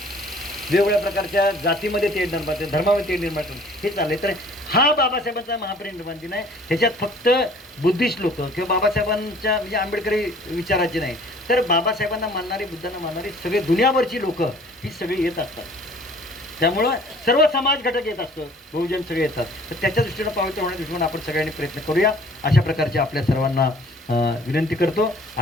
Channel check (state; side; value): normal; both; correlation 0.52